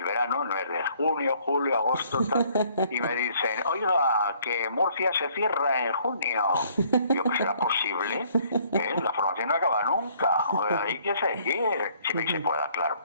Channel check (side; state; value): both; inverted; correlation -0.62